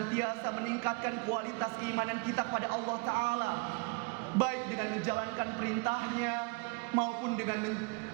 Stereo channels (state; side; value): quieter; left; 29.8 dB